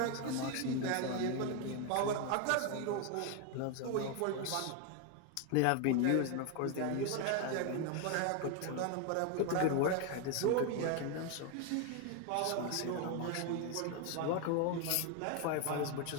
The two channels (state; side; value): different; both; correlation 0.01